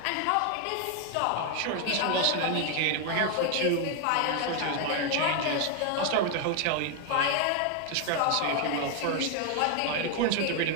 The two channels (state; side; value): different; both; correlation 0.01